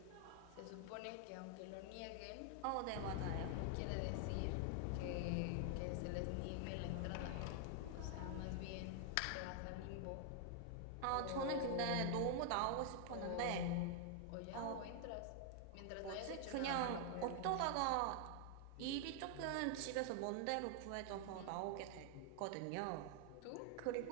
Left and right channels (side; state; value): both; different; correlation 0.00